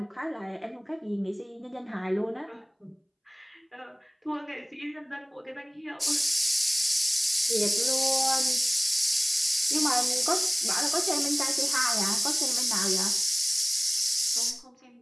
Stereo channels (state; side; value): identical; both; correlation 1.00